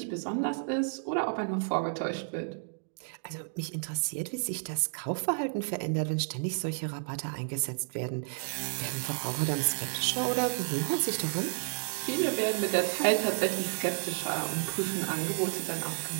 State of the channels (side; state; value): left; silent; digital silence